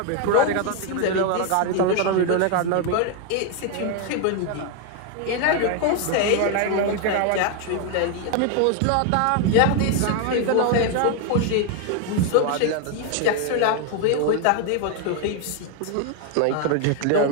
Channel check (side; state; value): both; different; correlation 0.01